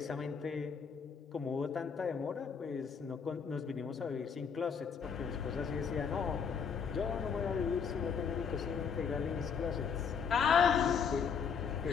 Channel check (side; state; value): right; quieter; 6.4 dB